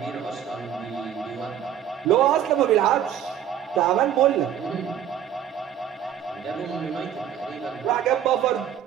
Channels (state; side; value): quieter; left; 9.8 dB